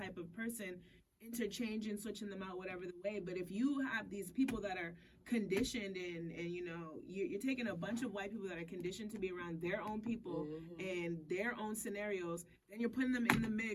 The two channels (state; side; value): identical; both; correlation 1.00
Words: of person, interchanging, switching them out, whatever the way. But if you have these people that are conditioned and you know, you're taking a bunch of white people that are conditioned to be around their own people and their own scenarios, then you're putting them in the